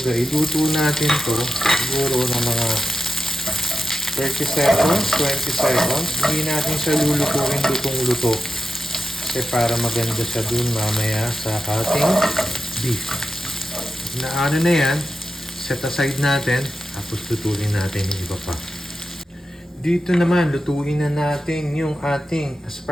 iluto natin to siguro na mga 30 seconds, 20 seconds. Hindi natin siya lulutuin lutong-luto. Kasi para maganda siya dun mamaya sa ating beef. Na ano na yan, set aside natin, tapos lutuin natin yung iba pa. Dito naman, lutuin na natin yung ating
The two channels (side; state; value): both; normal; correlation 0.91